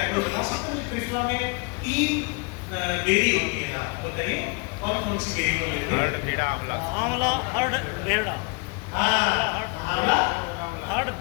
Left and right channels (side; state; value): right; quieter; 31.8 dB